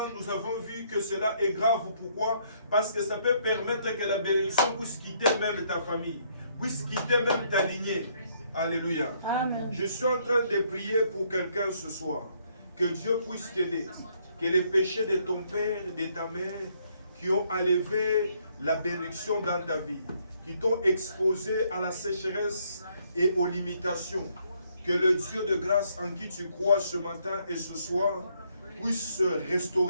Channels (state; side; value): inverted; both; correlation -0.69